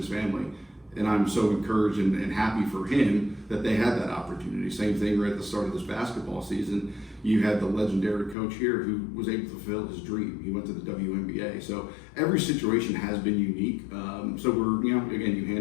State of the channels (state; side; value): drops out; right; at 8.3 s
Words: family. And I'm so encouraged and happy for him that they had that opportunity. Same thing right at the start of this basketball season. You had the legendary coach here who was able to fulfill his dream. He went to the WNBA. So every situation has been unique. So again, you